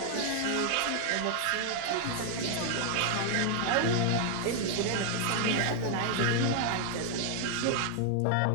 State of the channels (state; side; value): different; both; correlation 0.00